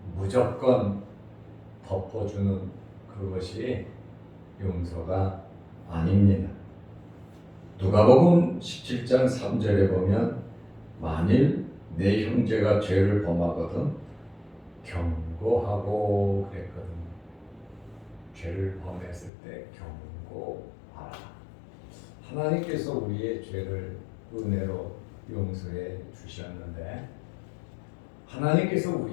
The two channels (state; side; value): drops out; right; at 19.3 s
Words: 무조건 덮어주는 그것이 용서가 아닙니다. 누가복음 17장 3절에 보면 만일 내 형제가 죄를 범하거든 경고하고 그랬거든요. 죄를 범했을 때 경고하라. 하나님께서 우리의 죄를 은혜로 용서해 주셨는데, 하나님께서